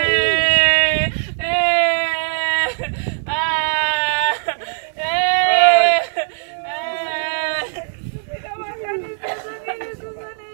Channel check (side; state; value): left; silent; 66 dB below the other